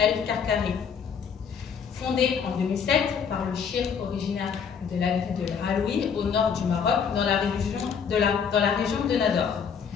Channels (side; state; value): right; quieter; 6.9 dB